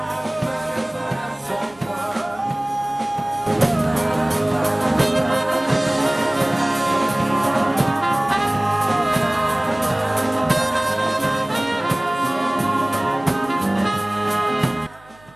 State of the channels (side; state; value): right; noise; hum, 28 dB below the sound